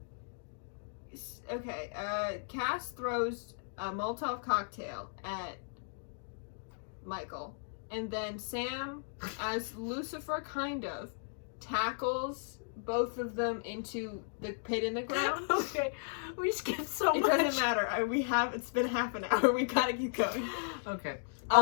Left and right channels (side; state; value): right; silent; digital silence